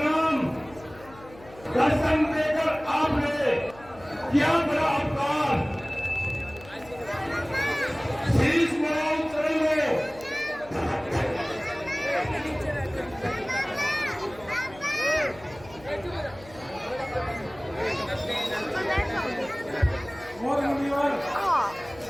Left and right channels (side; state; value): left; noise; hum, 21 dB below the sound